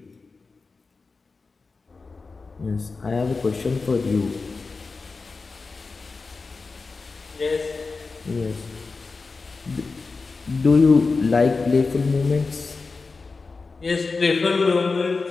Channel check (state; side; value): quieter; right; 4.2 dB